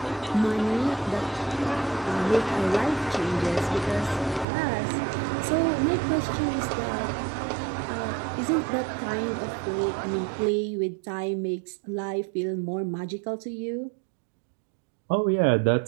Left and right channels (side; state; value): left; drops out; at 4.5 s